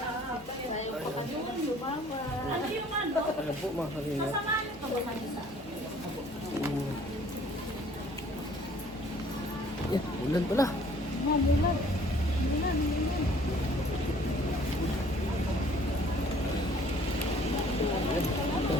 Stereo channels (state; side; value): normal; both; correlation 0.55